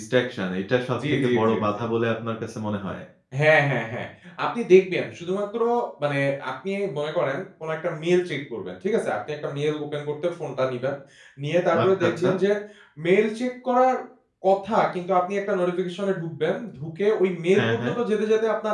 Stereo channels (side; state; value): both; identical; correlation 1.00